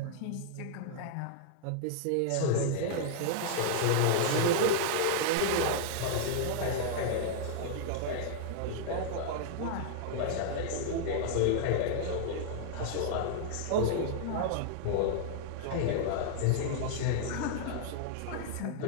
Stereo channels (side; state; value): both; different; correlation -0.01